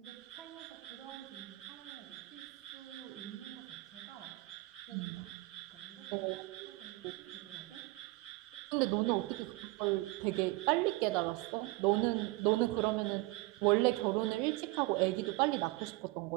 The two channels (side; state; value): left; quieter; 21.2 dB